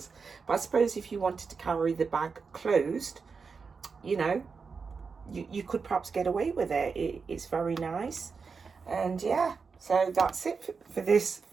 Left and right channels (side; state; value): left; quieter; 5.1 dB